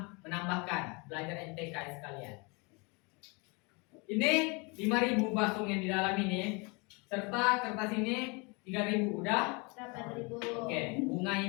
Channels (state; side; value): quieter; right; 29.7 dB